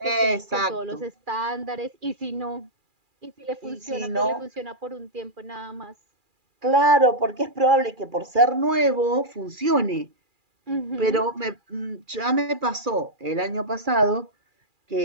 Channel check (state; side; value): late; left; 2.4 ms